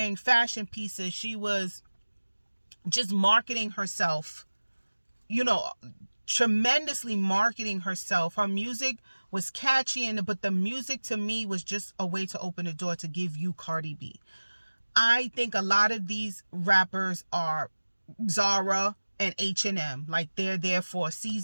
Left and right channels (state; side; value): inverted; both; correlation -1.00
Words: fashion pieces. She was just marketing herself, tremendously marketing herself. Her music was catchy, but the music to me was just a way to open the door to give you Cardi B. I think a lot of these rappers are Zara and H&M. Like, they're there for a